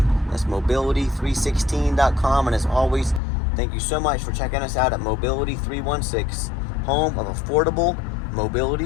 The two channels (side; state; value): right; drops out; at 3.2 s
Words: That's mobility316.com, and as always, Thank you so much for checking us out at Mobility 316, home of affordable